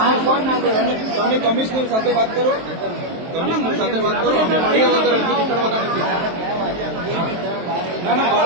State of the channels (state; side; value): late; left; 23 ms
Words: તમે કમિશનર સાથે વાત કરો. કમિશનર સાથે વાત કરો. અમે મળ્યા વગર અહીંથી નીકળવાના નથી. ના